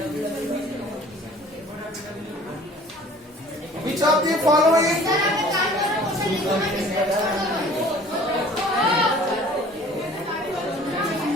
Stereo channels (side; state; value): both; normal; correlation 0.49